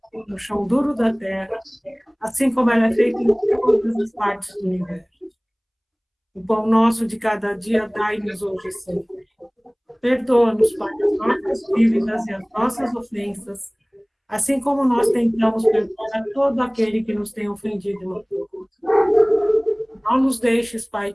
no chão duro da terra, assim como ela é feita em todas as partes do universo. O pão nosso de cada dia dai-nos hoje sempre. Perdoa-nos, Pai, as nossas dívidas e as nossas ofensas, assim como nós tentamos perdoar a todo aquele que nos tem ofendido e magoado. Não nos deixes, Pai,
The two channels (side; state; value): both; identical; correlation 1.00